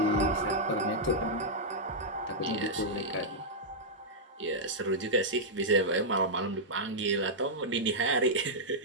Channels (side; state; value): both; normal; correlation -0.08